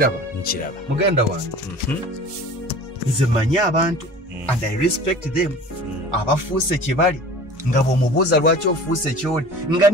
Nkiraba. Muganda wange. Nze manyi abantu and I respect them. Abafuuse kye bali nga bw'omubuuza lwaki ofuuse ky'oli nga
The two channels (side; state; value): both; normal; correlation 0.42